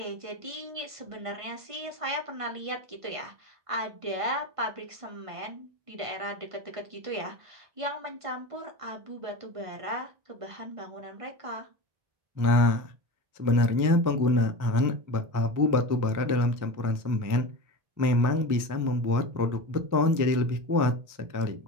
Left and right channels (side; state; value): left; late; 1.5 ms